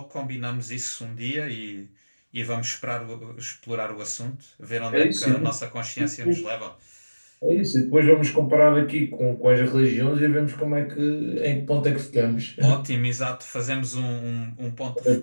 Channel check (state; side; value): inverted; both; correlation -1.00